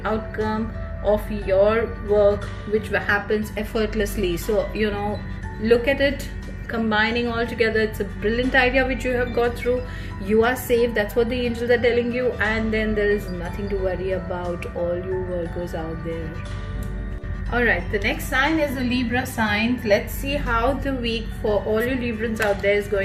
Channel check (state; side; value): identical; both; correlation 1.00